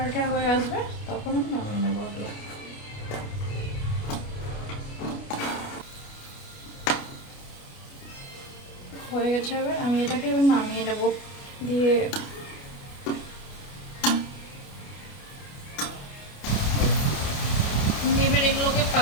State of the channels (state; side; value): late; right; 29 ms